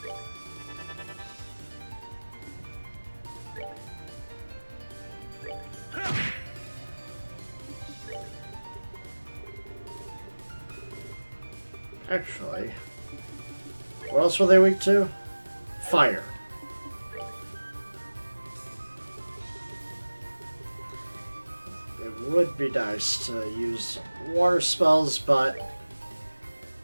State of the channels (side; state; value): both; inverted; correlation -1.00